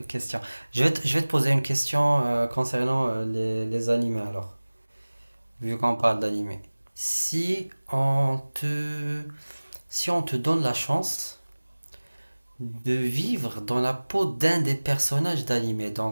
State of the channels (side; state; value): both; inverted; correlation -1.00